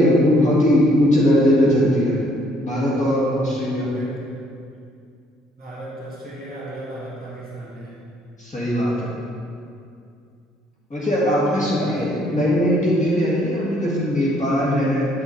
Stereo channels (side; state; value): both; normal; correlation 0.66